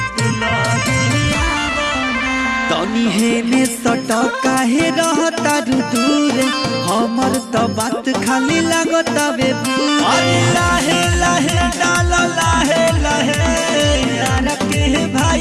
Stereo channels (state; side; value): identical; both; correlation 1.00